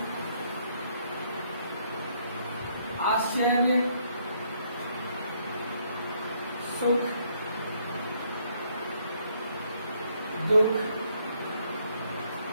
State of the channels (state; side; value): inverted; both; correlation -0.69